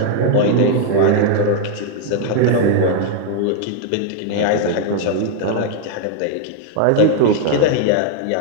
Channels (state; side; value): different; both; correlation 0.00